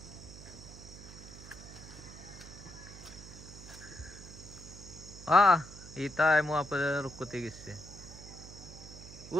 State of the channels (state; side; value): noise; right; hum, 15 dB below the sound